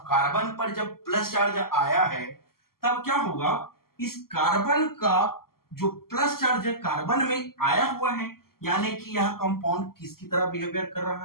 कार्बन पर जब प्लस चार्ज आया है तब क्या होगा, इस कार्बन का जो प्लस चार्ज कार्बन में आया हुआ है, यानी कि यह कंपाउंड किसकी तरह बिहेवियर कर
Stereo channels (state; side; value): late; right; 0.93 ms